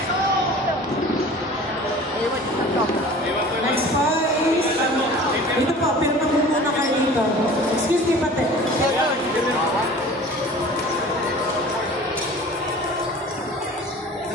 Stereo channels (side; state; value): both; normal; correlation 0.43